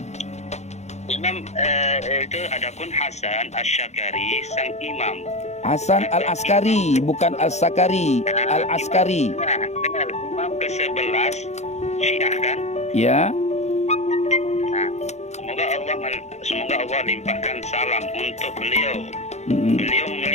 Imam itu adapun Hasan Asy-Syakari sang imam. Hasan Al-Askari, bukan Al-Sakari, Al-Askari. Nah, imam ke-11 Syiah kan? Ya. Nah, semoga Allah limpahkan salam untuk beliau. Beliau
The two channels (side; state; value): right; late; 0.33 ms